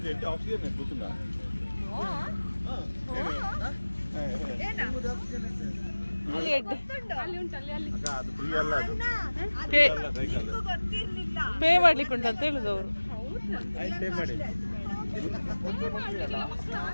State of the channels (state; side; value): inverted; both; correlation -1.00